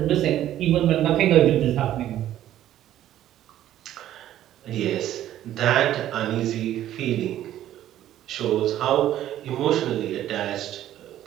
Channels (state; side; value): quieter; left; 12.4 dB